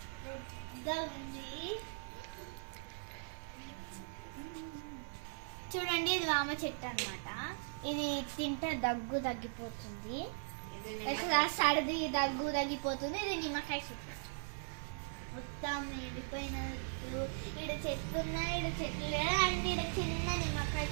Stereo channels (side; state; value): left; silent; 52 dB below the other